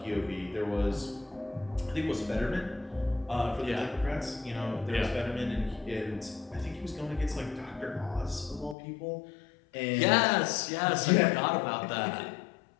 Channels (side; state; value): right; drops out; at 8.8 s